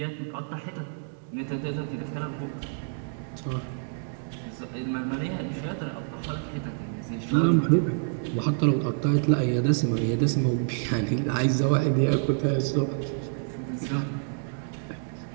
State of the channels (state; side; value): silent; left; digital silence